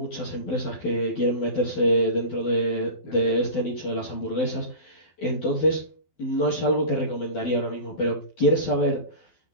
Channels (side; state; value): right; late; 12 ms